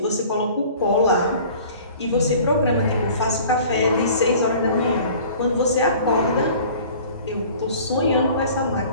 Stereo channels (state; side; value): inverted; both; correlation -0.47